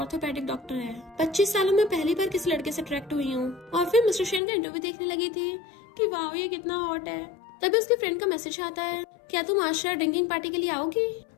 डॉक्टर है। 25 सालों में पहली बार किसी लड़के से अट्रैक्ट हुई हूँ। और फिर मिस्टर शन का इंटरव्यू देखने लगी थी कि वाह ये कितना हॉट है। तभी उसके फ्रेंड का मैसेज आता है, क्या तुम आज शायद ड्रिंकिंग पार्टी के लिए आओगी?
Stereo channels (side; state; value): right; drops out; at 4.4 s